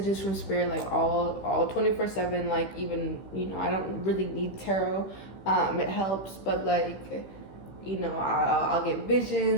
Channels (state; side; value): late; right; 16 ms